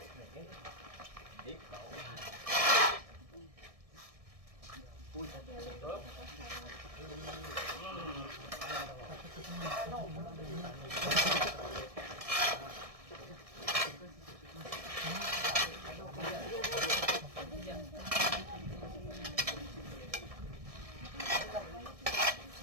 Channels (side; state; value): left; late; 1.6 ms